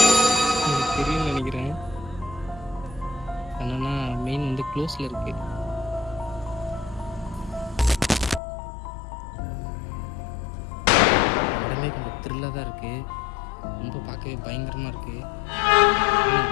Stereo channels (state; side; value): drops out; right; at 8.4 s